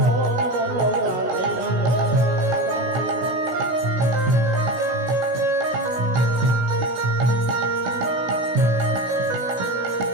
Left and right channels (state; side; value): late; left; 16 ms